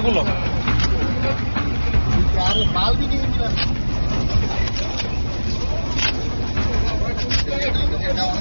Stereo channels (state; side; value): inverted; both; correlation -1.00